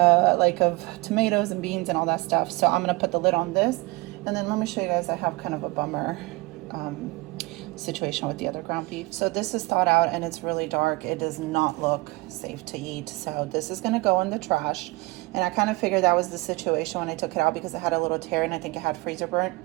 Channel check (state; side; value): quieter; left; 23.5 dB